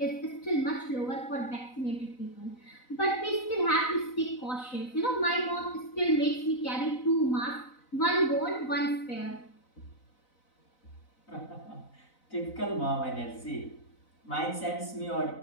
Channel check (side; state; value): right; late; 4.0 ms